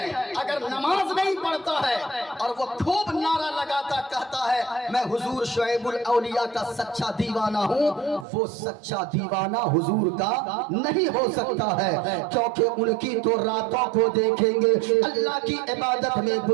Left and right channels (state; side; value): drops out; left; at 8.2 s